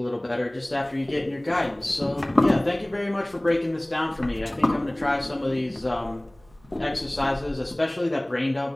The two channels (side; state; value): right; noise; hum, 30 dB below the sound